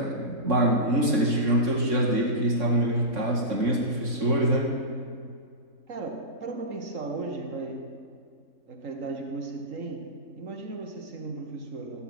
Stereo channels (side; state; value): left; late; 3.6 ms